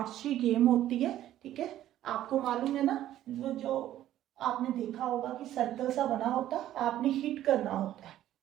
गेम होती है, ठीक है। आपको मालूम है ना, जो आपने देखा होगा कि सर्कल सा बना होता है, आपने हिट करना होता है,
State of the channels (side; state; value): left; quieter; 12.8 dB